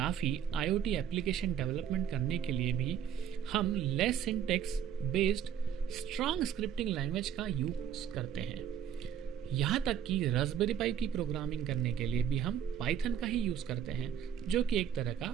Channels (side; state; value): left; quieter; 8.9 dB